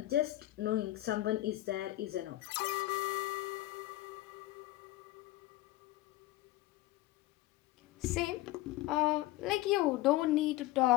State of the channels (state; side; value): quieter; right; 17.0 dB